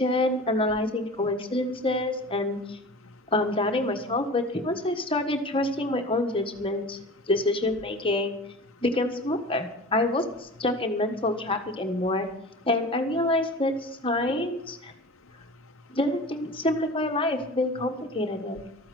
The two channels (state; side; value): normal; both; correlation 0.37